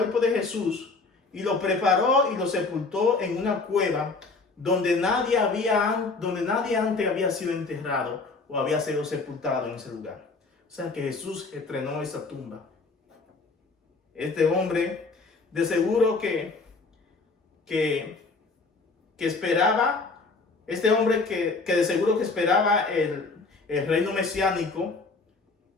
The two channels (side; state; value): right; quieter; 3.9 dB